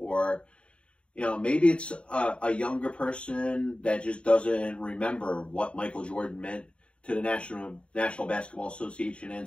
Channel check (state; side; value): late; right; 0.058 ms